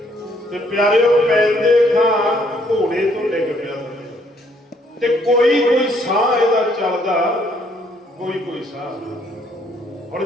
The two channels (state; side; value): normal; both; correlation 0.67